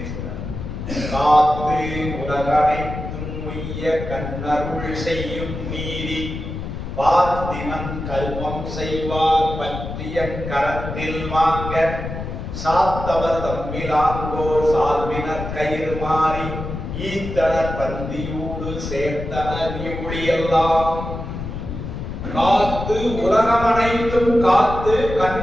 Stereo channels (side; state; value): left; noise; rumble, 7 dB below the sound